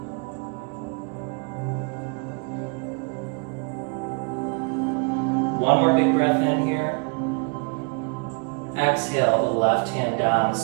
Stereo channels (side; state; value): left; quieter; 34.6 dB